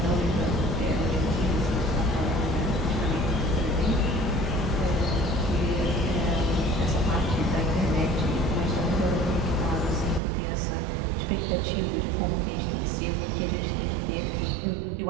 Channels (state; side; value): drops out; left; at 10.2 s